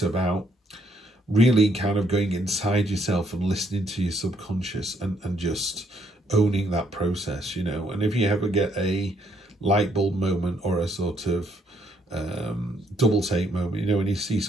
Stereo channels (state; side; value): normal; both; correlation 0.70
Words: about really kind of going inside yourself and listening to your subconscious and just owning that process, you know. And if you ever get a light bulb moment or a sort of double take moment, you know, when you see